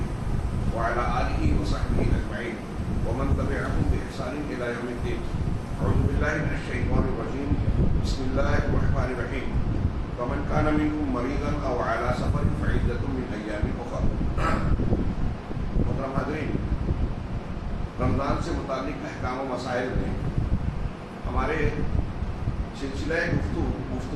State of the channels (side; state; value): both; identical; correlation 1.00